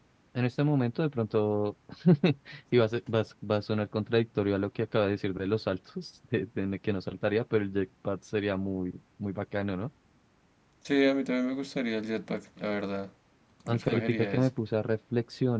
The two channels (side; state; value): both; identical; correlation 1.00